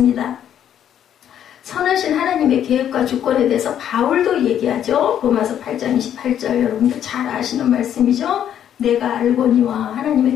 선하신 하나님의 계획과 주권에 대해서 바울도 얘기하죠. 로마서 8장 28절 여러분들 잘 아시는 말씀이죠. 내가 알거니와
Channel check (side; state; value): right; quieter; 10.0 dB